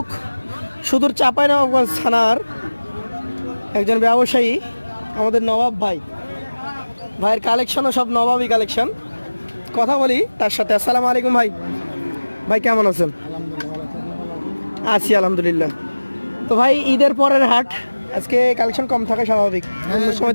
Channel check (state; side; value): inverted; both; correlation -1.00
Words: সুদূর চাঁপাইনবাবগঞ্জ থানার একজন ব্যবসায়ী, আমাদের নবাব ভাই। ভাইয়ের কালেকশনও সব নবাবই কালেকশন। কথা বলি তার সাথে। আসসালামু আলাইকুম ভাই। ভাই কেমন আছেন? আছি আলহামদুলিল্লাহ। তো ভাই, ঈদের পরের হাট, আজকে কালেকশন কম থাকে স্বাভাবিক, অন্য সময়